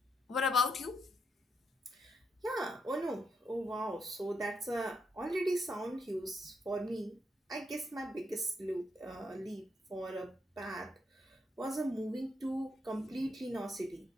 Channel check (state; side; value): normal; both; correlation 0.79